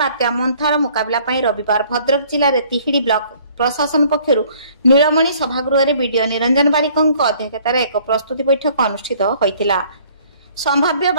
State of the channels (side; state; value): both; inverted; correlation -0.58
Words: मंथार मुकाबला रविवार भद्रक जिले में तिहिड़ी ब्लॉक प्रशासन पक्षर नीलमणि सभागृह वीडियो निरंजन बारिकों अध्यक्षतार एक प्रस्तुति बैठक अनुष्ठित होइतिला। संभाव्य